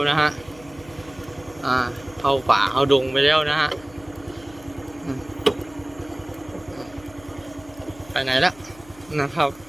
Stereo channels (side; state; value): left; noise; hum, 23 dB below the sound